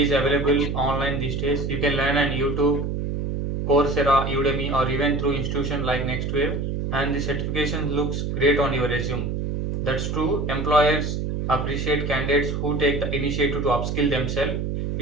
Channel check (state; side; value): noise; right; hum, 2 dB below the sound